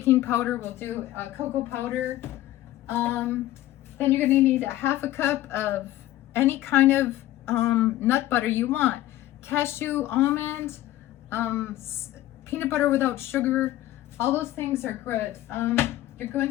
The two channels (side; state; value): right; quieter; 15.0 dB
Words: powder will do. Cocoa powder. Then you're going to need a half a cup of any kind of nut butter you want. Cashew, almond, peanut butter without sugar. All those things are good. You're